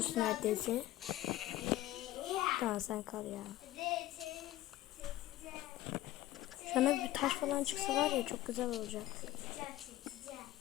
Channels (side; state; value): right; quieter; 15.0 dB